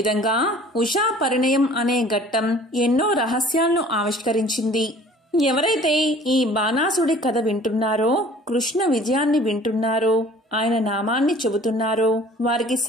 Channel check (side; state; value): both; normal; correlation 0.50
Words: ఉషా పరిణయం అనే ఘట్టం ఎన్నో రహస్యాలను ఆవిష్కరించింది. ఎవరైతే ఈ బాణాసుడి కథ వింటున్నారో, కృష్ణ విజయాన్ని వింటున్నారో, ఆయన నామాన్ని చెబుతున్నారో వారికి